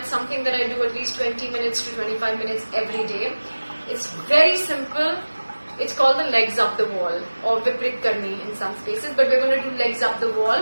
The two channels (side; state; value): both; inverted; correlation -1.00